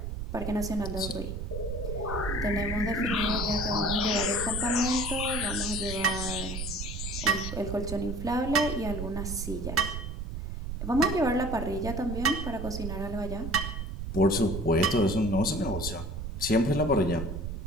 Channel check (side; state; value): right; noise; rumble, 5 dB below the sound